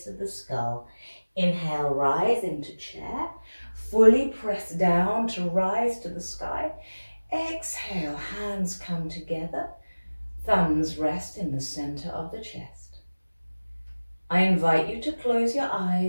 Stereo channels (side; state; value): both; inverted; correlation -1.00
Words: of the skull. Inhale, rise into chair, fully press down to rise to the sky. Exhale, hands come together, thumbs rest in the center of the chest. I invite you to close your